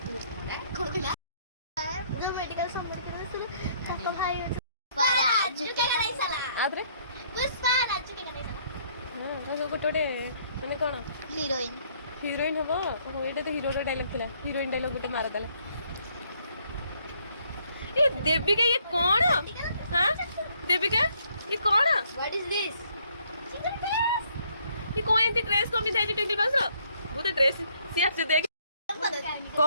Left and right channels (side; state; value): both; inverted; correlation -0.66